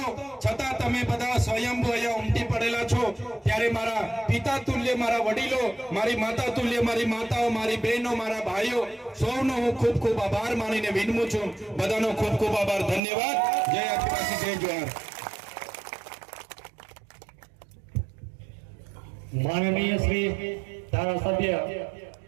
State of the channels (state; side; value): drops out; left; at 13.0 s